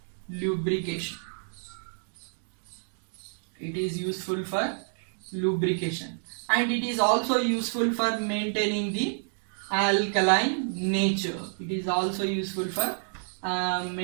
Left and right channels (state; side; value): silent; left; digital silence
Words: lubrication. It is useful for lubrication. And it is also useful for maintaining the alkaline nature. It is also useful for